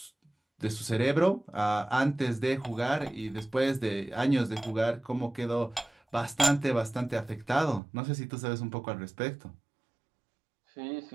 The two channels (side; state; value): left; drops out; at 7.8 s